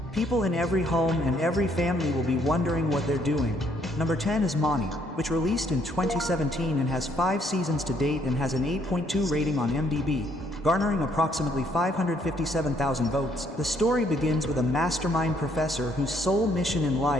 People in every home and every family will be wondering what they're doing. Number 10 is Mani, which released in 2017 and has 5 seasons to date and has an 8.2 rating on iMDb, garnering approximately 557,000 votes. The story begins with a mastermind professor whose sole mission in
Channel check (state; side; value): normal; both; correlation 0.68